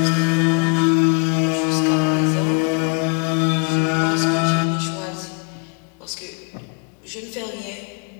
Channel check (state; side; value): quieter; right; 33.1 dB